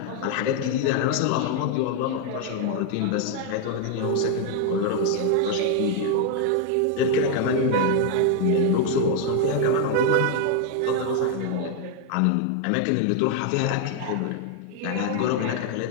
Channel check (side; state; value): both; different; correlation 0.00